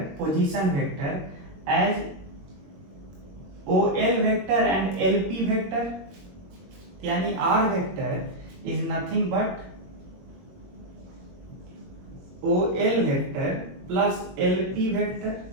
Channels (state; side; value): late; left; 22 ms